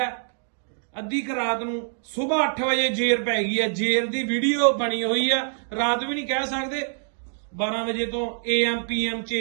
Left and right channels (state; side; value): silent; left; digital silence